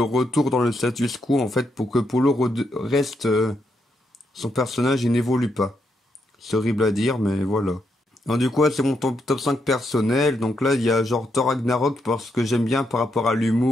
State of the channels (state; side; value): normal; both; correlation 0.80